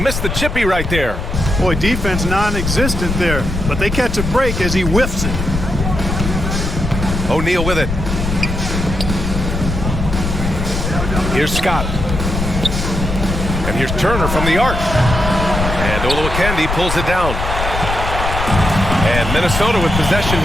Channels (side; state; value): left; noise; rumble, 3 dB below the sound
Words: the chippy right there. Boy, defense non-existent there, but they catch a break as he whiffs it. O'Neal with it. Here's Scott. And here's Turner from the arc. And Olowokandi pulls it down. And Minnesota with possession